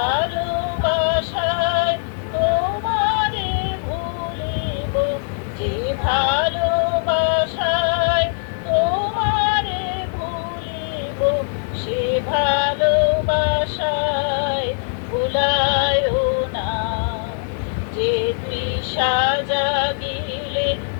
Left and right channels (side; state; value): right; silent; digital silence